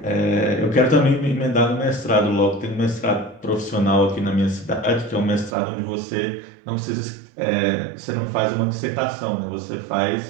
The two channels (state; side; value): drops out; left; at 5.6 s